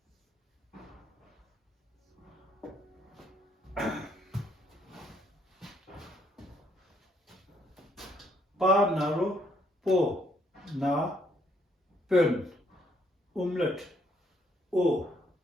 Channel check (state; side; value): normal; both; correlation 0.70